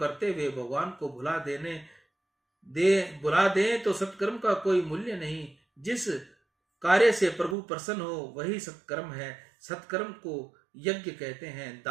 हुए भगवान को बुला दे तो सत्कर्म का कोई मूल्य नहीं। जिस कार्य से प्रभु प्रसन्न हो वही सत्कर्म है। सत्कर्म को यज्ञ कहते हैं।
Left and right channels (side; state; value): left; drops out; at 7.6 s